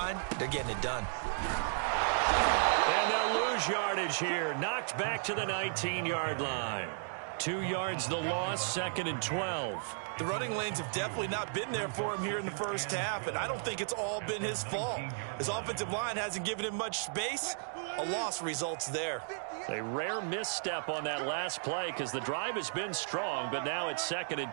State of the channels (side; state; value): left; silent; digital silence